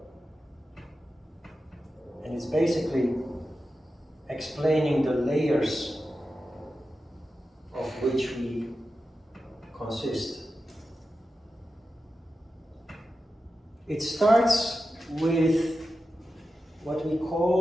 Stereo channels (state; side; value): normal; both; correlation 0.91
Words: And it's basically explaining the layers of which we consist. It starts with what we